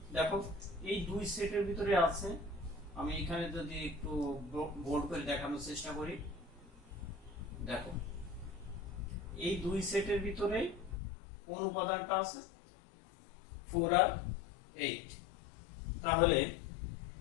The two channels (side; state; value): right; drops out; at 11.0 s